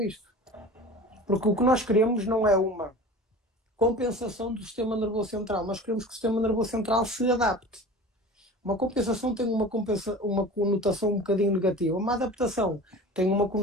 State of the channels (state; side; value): normal; both; correlation 0.37